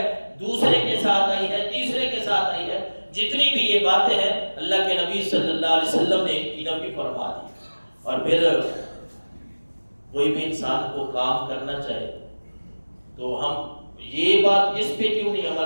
دوسرے کے ساتھ آئی ہے، تیسرے کے ساتھ آئی ہے، جتنی بھی یہ باتیں ہیں اللہ کے نبی صلی اللہ علیہ وسلم نے ان کی نفی فرما دی۔ اور پھر کوئی بھی انسان کو کام کرنا چاہے تو ہم یہ بات اس پہ کیوں نہیں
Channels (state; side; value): inverted; both; correlation -1.00